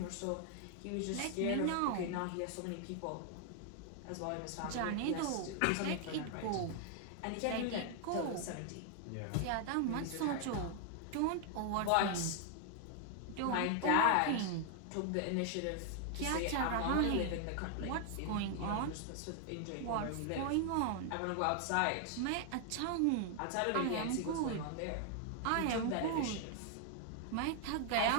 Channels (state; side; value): different; both; correlation 0.00